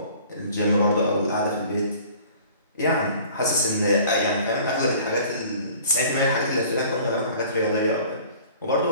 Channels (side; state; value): both; inverted; correlation -0.49